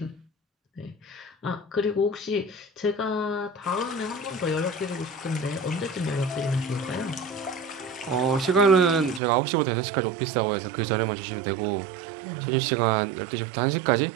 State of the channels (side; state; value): left; drops out; at 9.2 s